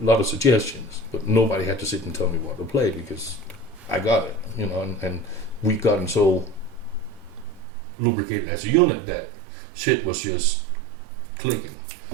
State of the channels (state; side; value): drops out; left; at 7.7 s